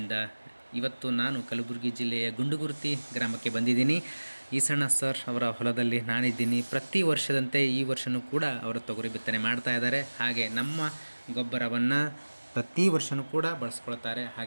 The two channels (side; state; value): both; inverted; correlation -1.00